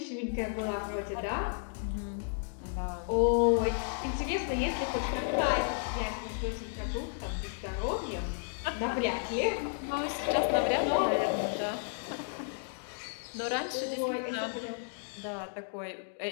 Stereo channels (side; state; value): right; silent; digital silence